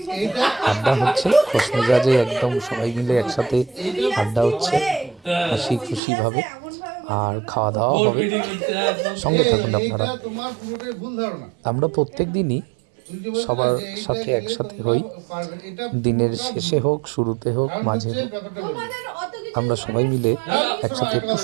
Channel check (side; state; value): left; drops out; at 6.0 s